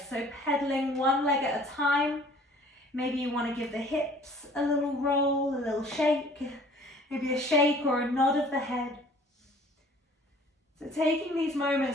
So pedaling one leg at a time. Maybe you want to give the hips a little roll, a little shake, maybe a shake or a nod of the head. So taking these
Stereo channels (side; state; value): both; normal; correlation 0.53